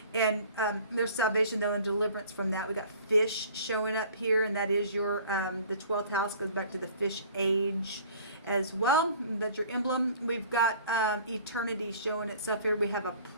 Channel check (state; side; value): inverted; both; correlation -0.49